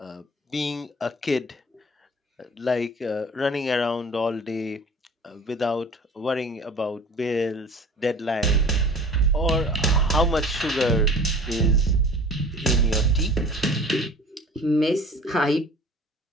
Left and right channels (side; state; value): both; normal; correlation 0.45